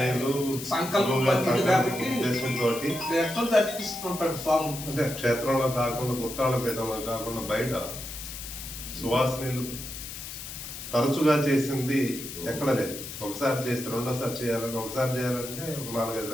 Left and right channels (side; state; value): left; noise; hiss, 9 dB below the sound